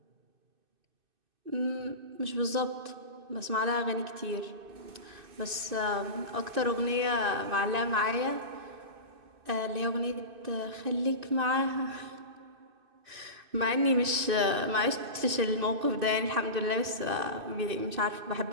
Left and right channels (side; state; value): left; late; 2.6 ms